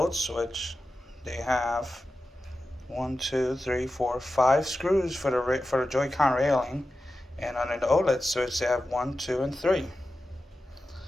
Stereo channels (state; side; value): normal; both; correlation 0.92